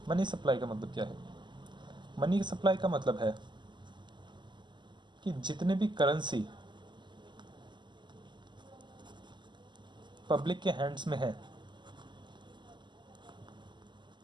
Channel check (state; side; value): late; left; 0.22 ms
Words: मनी सप्लाई का मतलब क्या है? मनी सप्लाई का मतलब है कि जितने भी करेंसी पब्लिक के हैंड्स में है